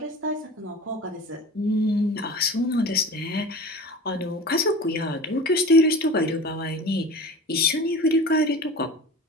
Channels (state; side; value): normal; both; correlation 0.35